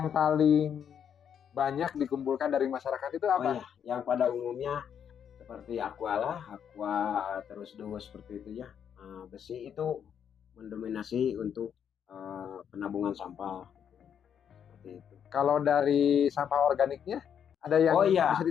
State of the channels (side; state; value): right; quieter; 8.3 dB